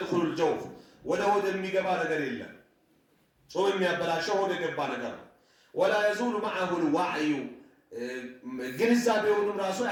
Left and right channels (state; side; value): identical; both; correlation 1.00